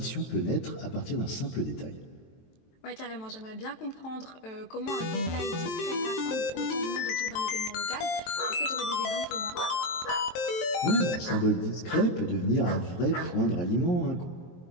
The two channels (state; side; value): late; right; 23 ms